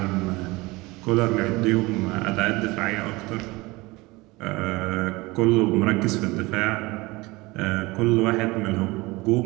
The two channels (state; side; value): quieter; left; 22.3 dB